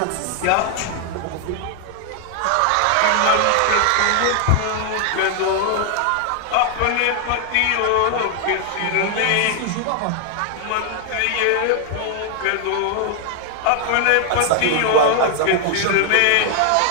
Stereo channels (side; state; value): both; different; correlation 0.00